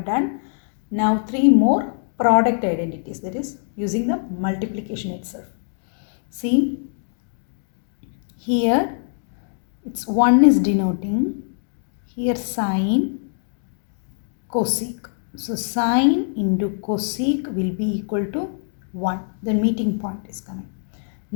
done. Now 3 more product identities, that is using the multiplication itself. See here, it's 1 is denoting here sine, cosec. So sine into cosec will be equal to 1. The meeting point is coming.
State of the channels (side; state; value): right; silent; 63 dB below the other